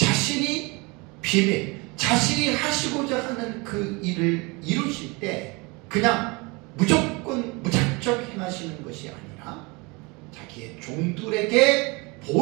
비밀, 자신이 하시고자 하는 그 일을 이루실 때 그냥 무조건 무작정 행하시는 것이 아니라 자기의 종들에게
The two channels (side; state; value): left; quieter; 27.2 dB